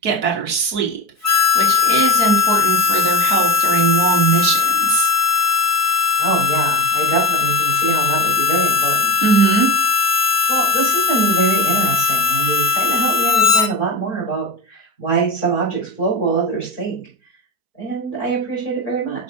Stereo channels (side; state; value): left; late; 4.5 ms